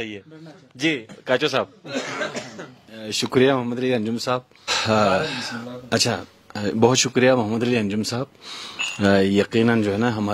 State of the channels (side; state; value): both; identical; correlation 1.00